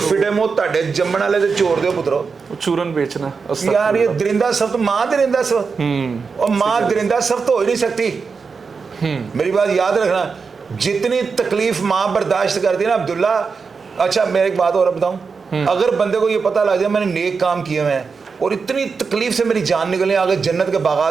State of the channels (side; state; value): left; quieter; 5.1 dB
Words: फिटे मो ताडे जम्मण वाले ते चोर दे पुत्रो, चूरन बेचना यार ये दरिंदा सख्त माँ दरिंदा सख्त, और माँ दरिंदा सख्त हो ही नहीं सकती। मेरी बात याद रखना, जितनी तकलीफ माँ बर्दाश्त करती है ना अब्दुल्ला। अच्छा मैं एक बात और बताऊं, अगर बंदे को ये पता लग जाए मैंने नेक काम किए हुए हैं और इतनी तकलीफ से मेरी जान निकले, आगे जन्नत के